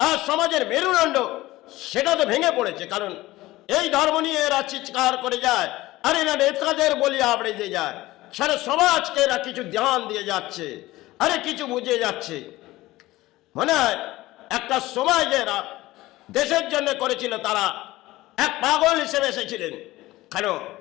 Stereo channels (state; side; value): quieter; right; 18.0 dB